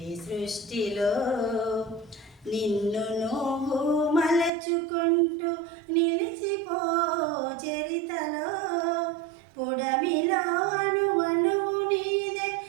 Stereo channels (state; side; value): drops out; left; at 4.5 s